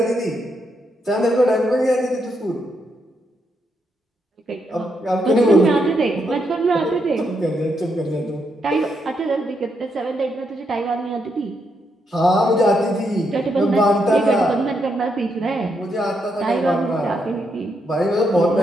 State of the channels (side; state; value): both; normal; correlation 0.79